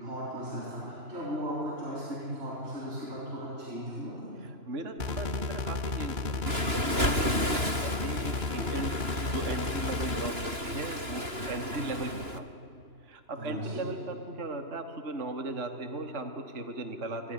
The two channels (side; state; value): left; late; 2.9 ms